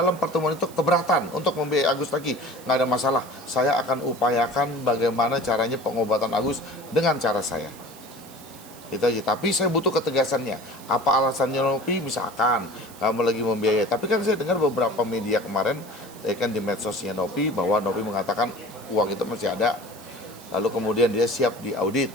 pertemuan itu keberatan untuk membiayai Agus lagi, nggak ada masalah. Saya akan upayakan bagaimana caranya pengobatan Agus dengan cara saya. Itu aja. Tapi saya butuh ketegasannya. Apa alasannya Novi? Misalkan kamu lagi membiayai. Tapi kan saya dengar beberapa media kemarin, kan di medsosnya Novi, bahwa Novi mengatakan uang itu masih ada. Lalu kemudian dia siap diaudit.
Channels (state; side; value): noise; right; hiss, 20 dB below the sound